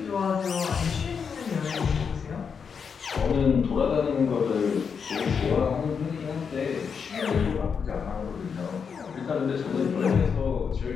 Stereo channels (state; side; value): quieter; right; 6.3 dB